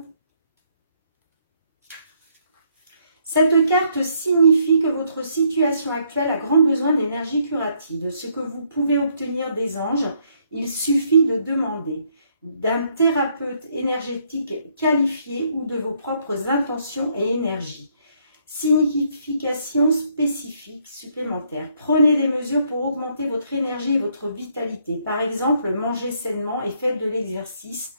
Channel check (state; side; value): inverted; both; correlation -0.70